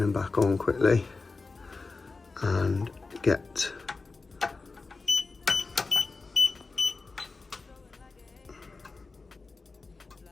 him back on quickly and get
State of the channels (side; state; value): right; quieter; 3.9 dB